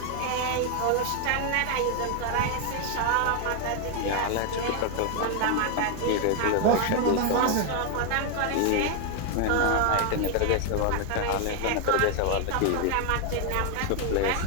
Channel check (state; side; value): different; both; correlation 0.01